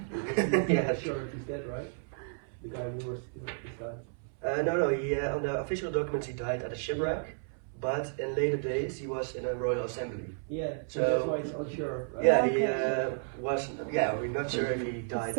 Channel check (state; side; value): silent; left; 56 dB below the other